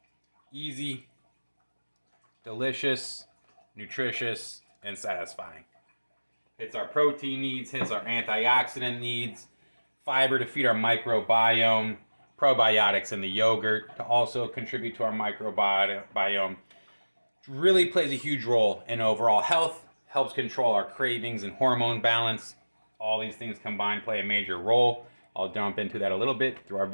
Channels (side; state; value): both; inverted; correlation -1.00